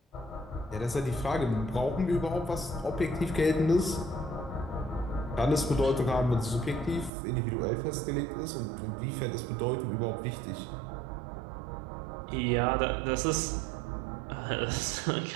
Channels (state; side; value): drops out; left; at 7.1 s